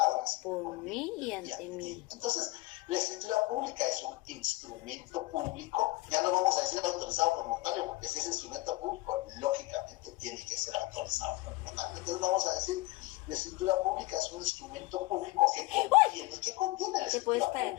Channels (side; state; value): right; quieter; 21.0 dB